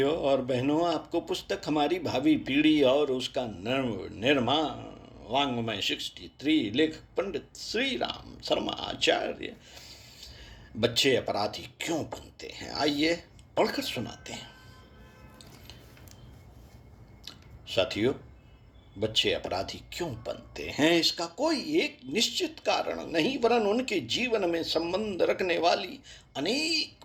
और बहनों, आपको पुस्तक हमारी भावी पीढ़ी और उसका निर्माण वाङ्मय 63 लेखक पंडित श्री राम शर्मा आचार्य बच्चे अपराधी क्यों बनते हैं, आइए पढ़कर सुनाते हैं। साथियों, बच्चे अपराधी क्यों बनते हैं इसका कोई एक निश्चित कारण नहीं, वरन उनके जीवन में संबंध रखने वाली अनेक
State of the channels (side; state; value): both; identical; correlation 1.00